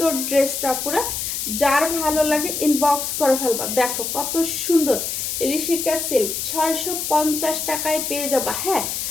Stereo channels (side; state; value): left; noise; hiss, 3 dB below the sound